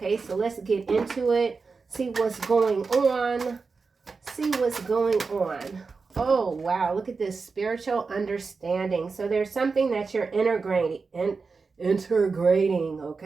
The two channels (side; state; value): left; quieter; 4.6 dB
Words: so let's get into it. See what's going on. See what's going on. Oh, wow. Look at this spiritual understanding. So there's something that you're integrating,